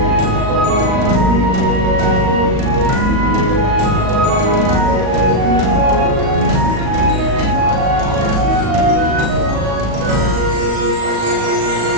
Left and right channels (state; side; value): late; left; 37 ms